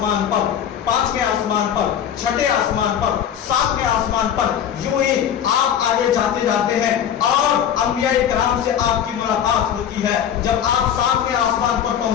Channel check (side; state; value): right; quieter; 9.3 dB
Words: پر, پانچویں آسمان پر, چھٹے آسمان پر, ساتویں آسمان پر. یوں ہی آپ آگے جاتے جاتے ہیں اور انبیاء کرام سے آپ کی ملاقات ہوتی ہے. جب آپ ساتویں آسمان پر